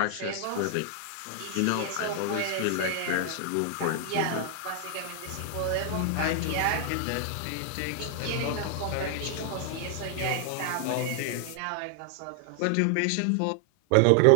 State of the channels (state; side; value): different; both; correlation 0.00